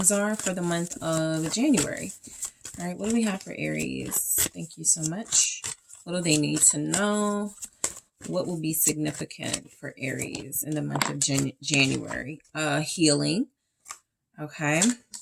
are for the month of January. All right, what do we have for Aries? Thank you so much. What do they need to know? What will be significant for Aries in the month of January? Healing. Okay.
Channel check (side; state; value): both; identical; correlation 1.00